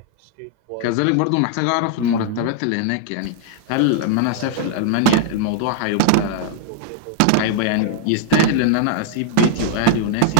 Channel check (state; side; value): different; both; correlation -0.01